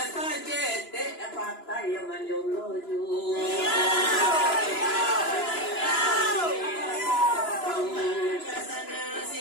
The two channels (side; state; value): right; late; 2.9 ms